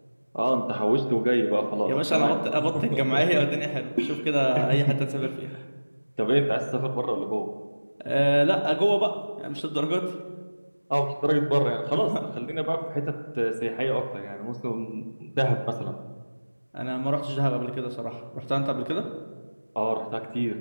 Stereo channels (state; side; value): inverted; both; correlation -1.00